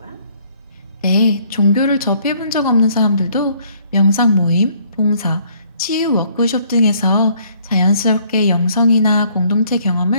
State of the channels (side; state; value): both; inverted; correlation -0.63